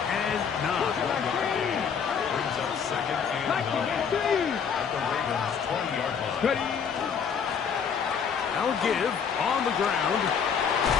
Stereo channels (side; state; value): right; quieter; 6.9 dB